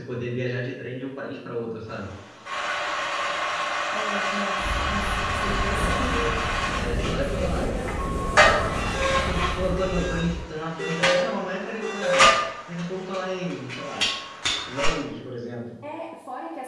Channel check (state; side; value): identical; both; correlation 1.00